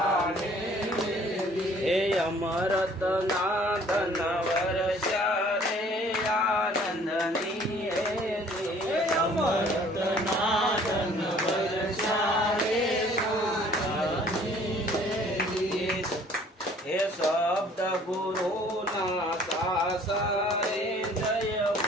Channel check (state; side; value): normal; both; correlation 0.55